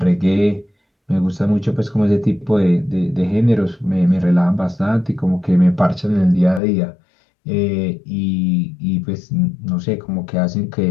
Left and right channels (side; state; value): right; drops out; at 6.6 s